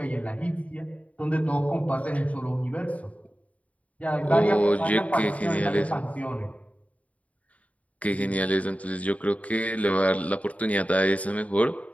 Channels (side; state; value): right; late; 0.068 ms